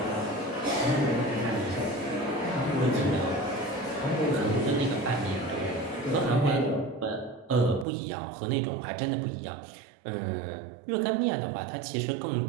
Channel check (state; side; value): drops out; left; at 7.9 s